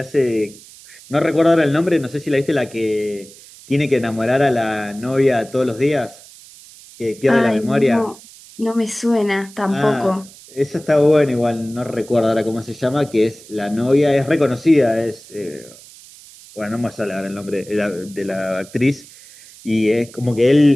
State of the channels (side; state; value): right; noise; hiss, 21 dB below the sound